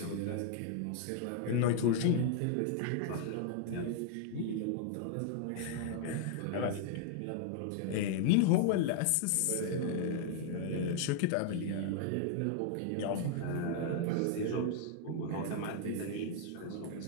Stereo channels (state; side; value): different; both; correlation 0.00